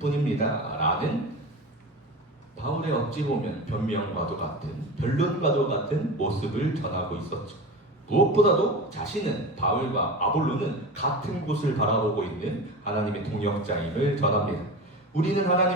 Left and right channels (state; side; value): normal; both; correlation 0.29